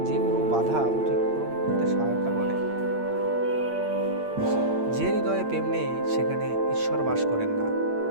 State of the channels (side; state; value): left; late; 8.7 ms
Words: যে কোনো বাধা অতিক্রম করতে সহায়তা করে। যে হৃদয়ে প্রেম নেই সেখানে ঈশ্বর বাস করেন না।